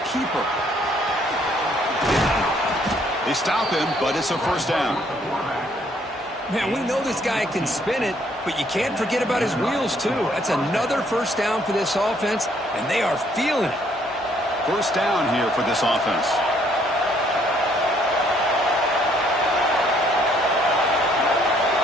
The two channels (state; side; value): normal; both; correlation 0.66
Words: keeper. They stop him, but it's a first down. Man, we know this guy can spin it, but you can't forget about his wheels, too. That's another first down for this offense, and they are feeling it. First down here for this offense.